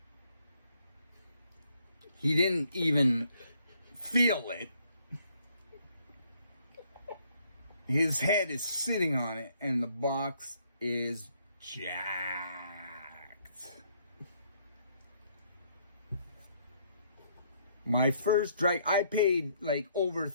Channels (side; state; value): both; inverted; correlation -0.68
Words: He didn't even feel it. His head is sitting on it, and the box is jacked. My first I paid like over